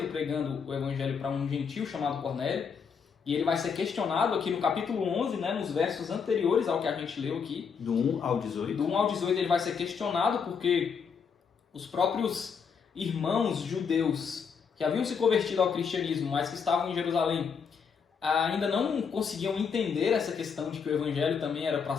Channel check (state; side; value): quieter; right; 6.2 dB